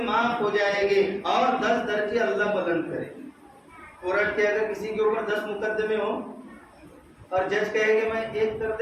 معاف ہو جائیں گے اور 10 درجے اللہ بلند کریں گے. کورٹ کے اگر کسی کے اوپر 10 مقدمے ہو اور جج کہے کہ میں ایک کر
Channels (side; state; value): both; identical; correlation 1.00